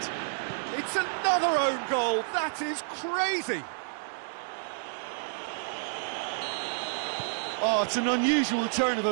It's another own goal. That is crazy. Oh, it's an unusual turn of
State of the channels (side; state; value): left; silent; 58 dB below the other